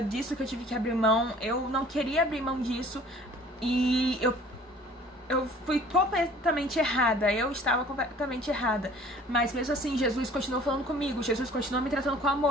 que eu tive que abrir mão. Eu não queria abrir mão disso e eu fui completamente errada, eu estava completamente errada, mas mesmo assim Jesus continuou falando comigo, Jesus continuou me tratando com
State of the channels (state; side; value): normal; both; correlation 0.51